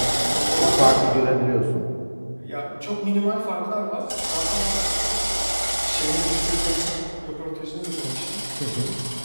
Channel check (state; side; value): inverted; both; correlation -1.00